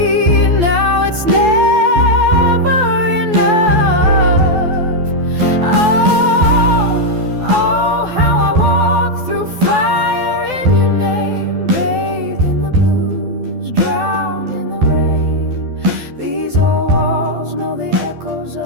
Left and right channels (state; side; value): late; left; 12 ms